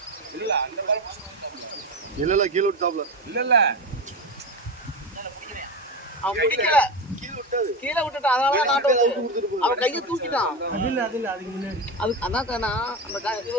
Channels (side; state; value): both; normal; correlation 0.20